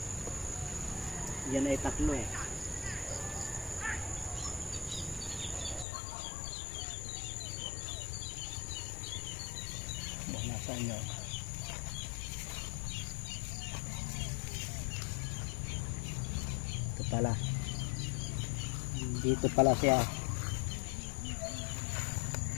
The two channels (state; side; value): drops out; right; at 5.9 s